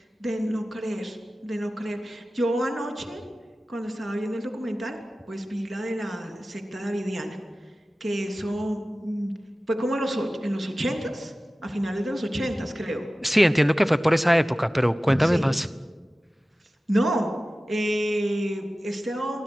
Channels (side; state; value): both; normal; correlation 0.96